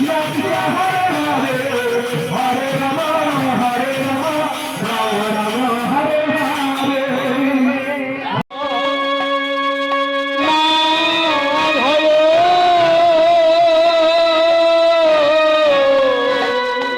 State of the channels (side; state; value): both; identical; correlation 1.00